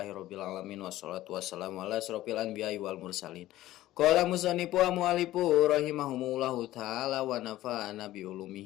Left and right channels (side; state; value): right; quieter; 15.3 dB